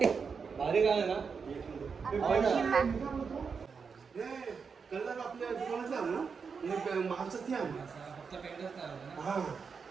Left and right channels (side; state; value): left; quieter; 5.6 dB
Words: भारी गाणं ना